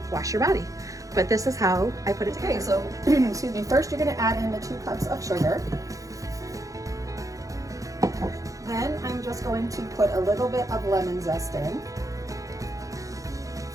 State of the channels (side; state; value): left; late; 0.16 ms